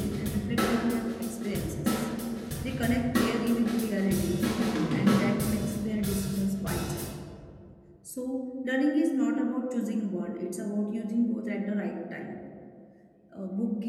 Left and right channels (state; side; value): identical; both; correlation 1.00